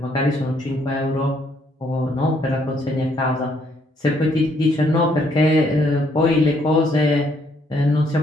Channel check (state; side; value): normal; both; correlation 0.69